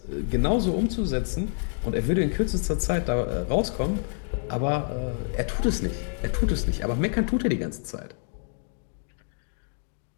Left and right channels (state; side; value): silent; right; 59 dB below the other